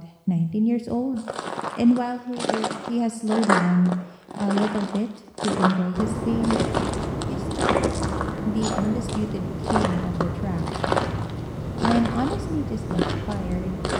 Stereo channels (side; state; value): both; identical; correlation 1.00